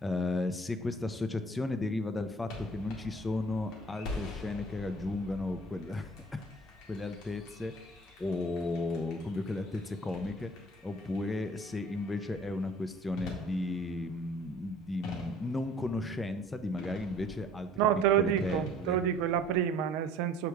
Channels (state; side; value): normal; both; correlation 0.52